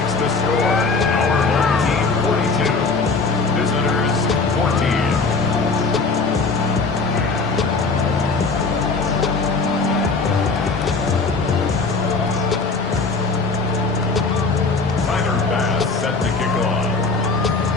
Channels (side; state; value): right; quieter; 4.1 dB